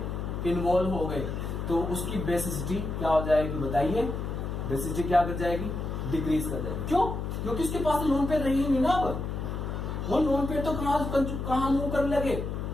हो गए तो उसकी बेसिसिटी क्या हो जाएगी बताइए? बेसिसिटी क्या कर जाएगी? डिक्रीज कर जाएगी। क्यों? क्योंकि उसके पास लोन पेयर रही नहीं ना। अब वो लोन पेयर तो कहां मूव करने लगे,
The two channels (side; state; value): left; noise; hum, 4 dB below the sound